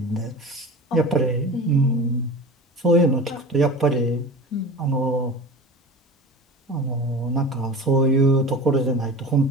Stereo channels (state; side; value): normal; both; correlation 0.34